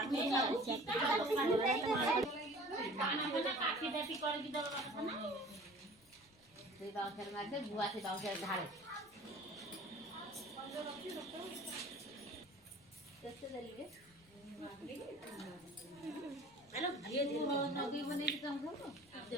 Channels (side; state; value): left; noise; rumble, 29 dB below the sound